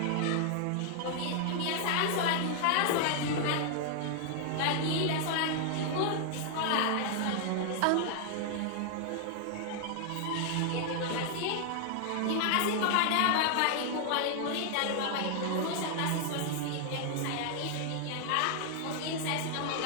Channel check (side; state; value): both; different; correlation 0.00